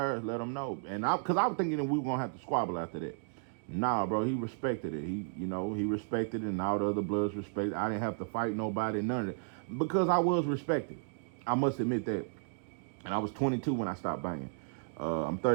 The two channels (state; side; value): silent; left; digital silence